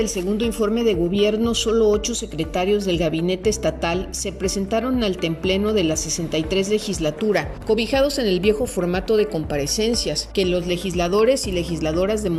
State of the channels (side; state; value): both; identical; correlation 1.00